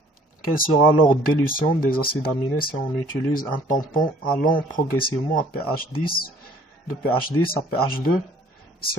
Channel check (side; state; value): both; normal; correlation 0.56